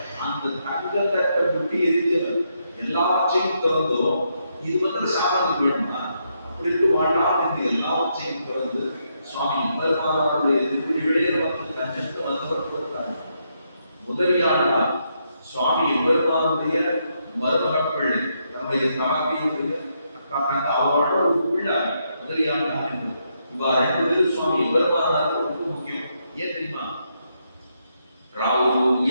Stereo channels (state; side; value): inverted; both; correlation -0.79